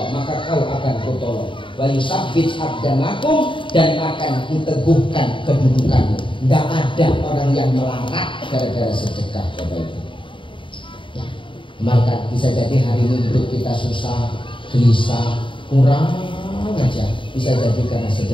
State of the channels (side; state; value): right; late; 0.24 ms